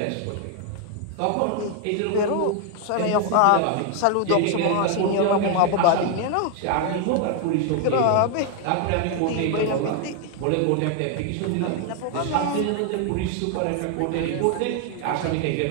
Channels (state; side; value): different; both; correlation 0.00